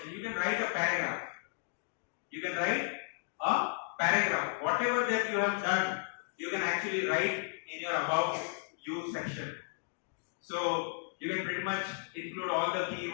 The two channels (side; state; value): right; silent; digital silence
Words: You can write a paragraph. You can write a paragraph. Whatever that you have done, you can actually write in your about you section. So you can pretty much include all the